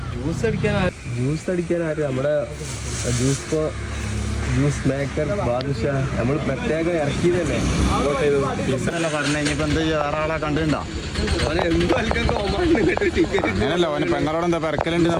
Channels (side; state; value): both; identical; correlation 1.00